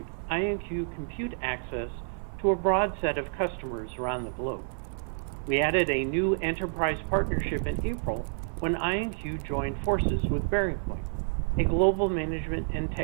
IonQ compute access to a broad set of customers around the globe. We added a new enterprise partnership in April when IonQ joined forces with BearingPoint, a global management and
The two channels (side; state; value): left; silent; 58 dB below the other